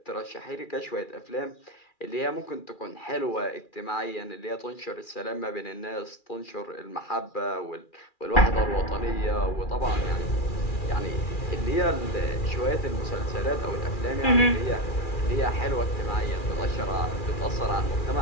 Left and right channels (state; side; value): late; right; 2.4 ms